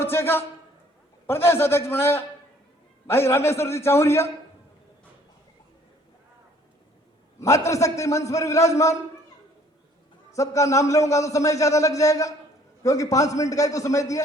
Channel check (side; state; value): both; normal; correlation 0.58